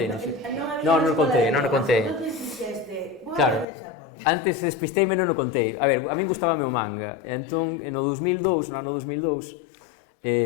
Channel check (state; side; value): drops out; right; at 3.7 s